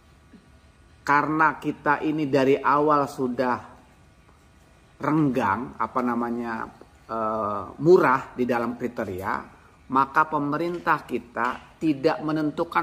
Karena kita ini dari awal sudah renggang, murah di dalam kriteria, maka pemerintah kita tidak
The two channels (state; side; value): identical; both; correlation 1.00